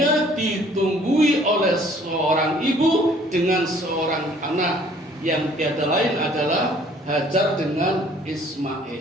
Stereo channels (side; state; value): both; normal; correlation 0.57